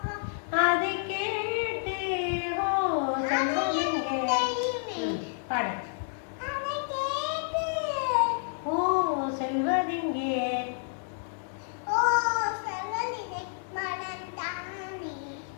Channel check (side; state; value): right; silent; 58 dB below the other